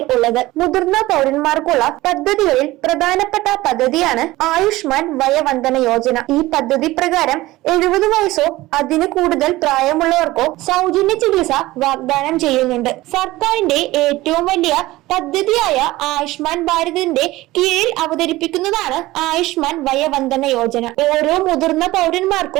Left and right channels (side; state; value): left; quieter; 18.2 dB